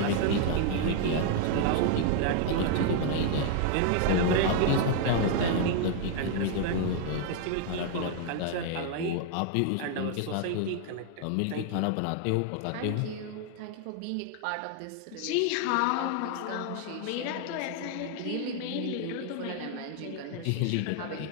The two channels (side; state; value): both; different; correlation 0.00